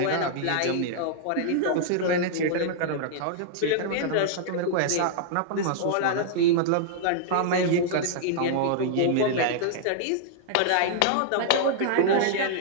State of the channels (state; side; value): different; both; correlation -0.01